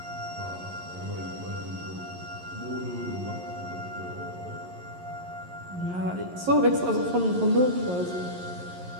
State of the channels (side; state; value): left; late; 11 ms